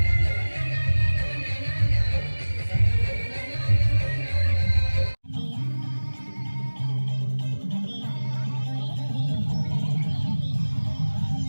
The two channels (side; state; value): both; inverted; correlation -1.00